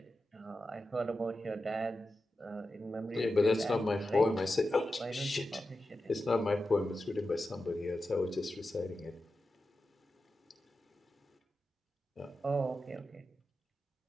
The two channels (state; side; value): normal; both; correlation 0.91